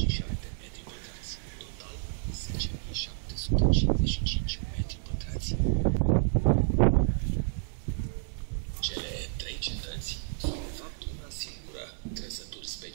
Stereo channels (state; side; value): silent; left; 58 dB below the other